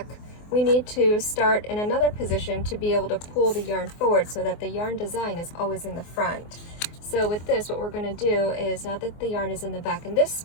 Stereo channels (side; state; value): right; late; 24 ms